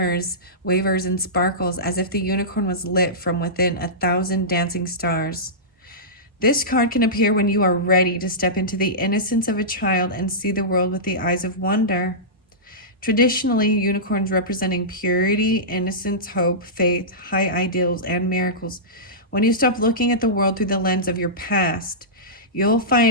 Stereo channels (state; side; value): normal; both; correlation -0.17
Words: wavers, and sparkles as if the unicorn was lit from within 1,000 dancing stars. This card can appear when you are ready to step into the innocence of a child and see the world with the eyes of wonder. Traditionally, unicorns representing purity, innocence, hope, faith, high ideals, and miracles. When you stop looking at the world through the lens of your past, you'll